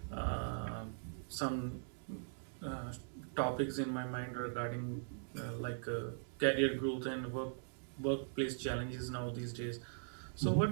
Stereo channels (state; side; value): silent; left; digital silence